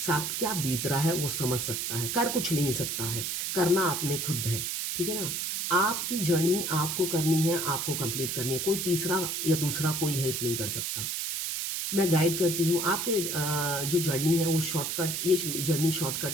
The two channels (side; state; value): right; noise; hiss, 2 dB below the sound